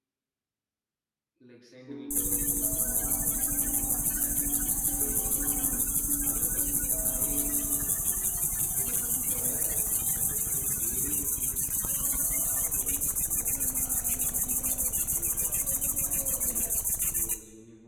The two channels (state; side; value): identical; both; correlation 1.00